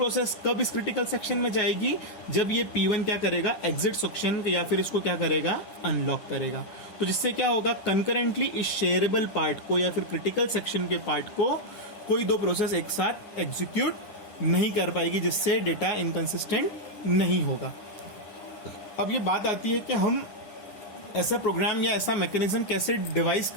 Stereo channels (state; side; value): late; right; 9.5 ms